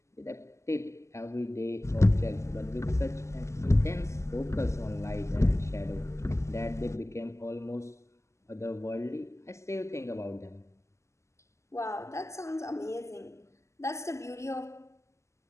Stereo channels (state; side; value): late; right; 0.13 ms